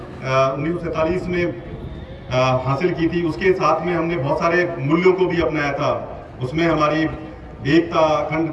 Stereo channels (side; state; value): both; identical; correlation 1.00